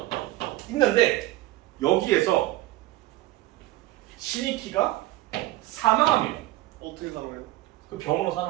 있는데 여기에서 신익희가 사망합니다. 어떻게 살아요? 그 병으로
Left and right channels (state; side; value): quieter; left; 16.8 dB